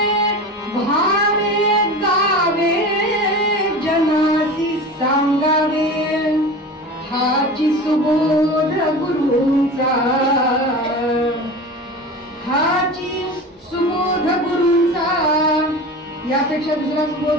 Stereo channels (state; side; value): normal; both; correlation 0.32